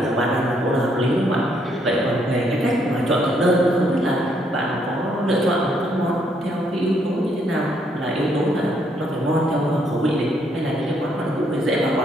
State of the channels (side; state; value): both; normal; correlation 0.72